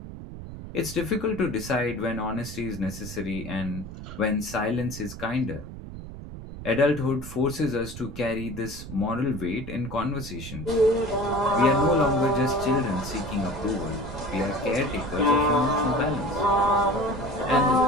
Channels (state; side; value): noise; right; rumble, 11 dB below the sound